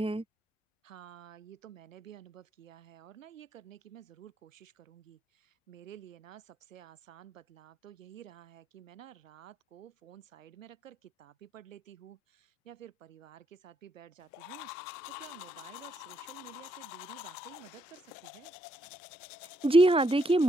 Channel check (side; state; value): both; normal; correlation 0.76